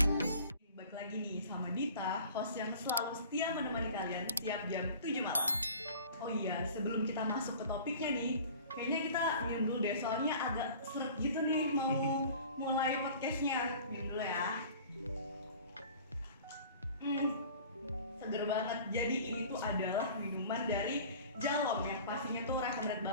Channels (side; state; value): both; inverted; correlation -0.44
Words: Balik lagi nih sama Dita, host yang selalu setia menemani kalian tiap jam 7 malam. Oh iya, sebelum kita masuk ke topiknya nih, kayaknya kita minum dulu deh, soalnya agak seret gitu nih mau mulai podcastnya. Minum dulu ya. Seger banget. Jadi ini tuh adalah minuman dari Jalom yang pastinya tuh recommended